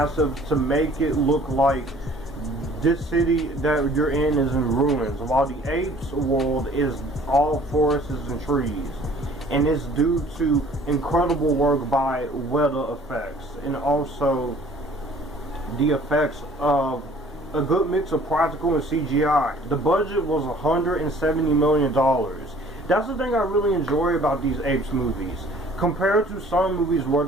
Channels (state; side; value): normal; both; correlation 0.53